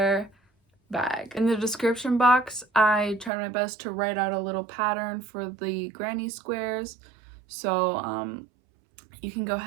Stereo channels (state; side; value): drops out; left; at 3.3 s